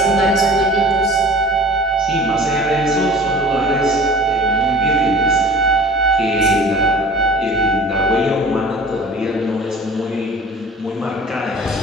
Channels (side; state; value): both; normal; correlation 0.42